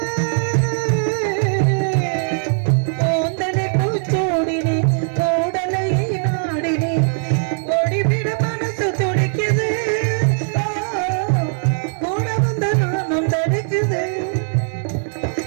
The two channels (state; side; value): silent; left; digital silence